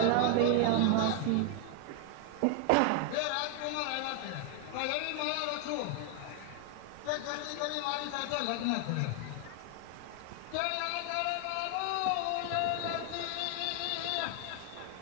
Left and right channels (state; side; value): different; both; correlation 0.00